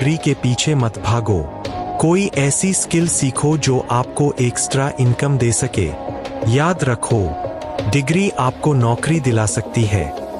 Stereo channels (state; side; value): identical; both; correlation 1.00